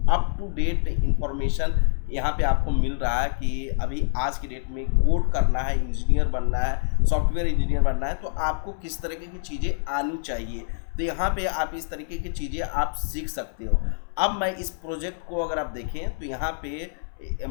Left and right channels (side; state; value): right; silent; 61 dB below the other